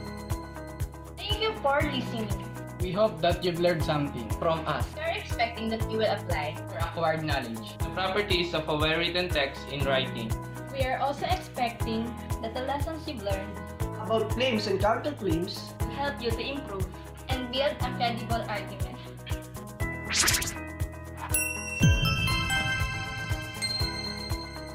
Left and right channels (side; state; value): both; identical; correlation 1.00